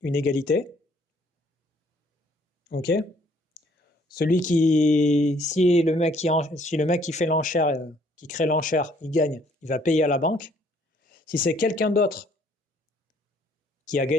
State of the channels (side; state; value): both; normal; correlation 0.63